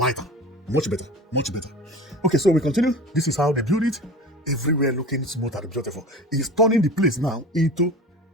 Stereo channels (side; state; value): both; normal; correlation 0.36